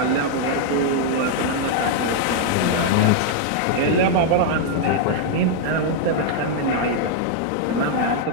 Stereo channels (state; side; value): different; both; correlation -0.01